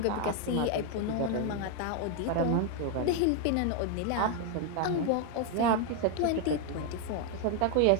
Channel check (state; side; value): different; both; correlation 0.01